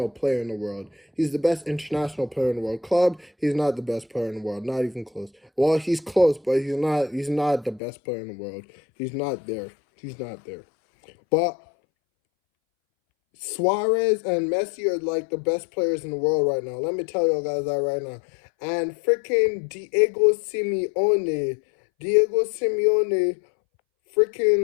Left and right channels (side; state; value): right; drops out; at 7.8 s